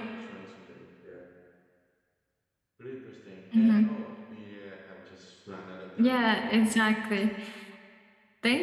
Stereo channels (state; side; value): identical; both; correlation 1.00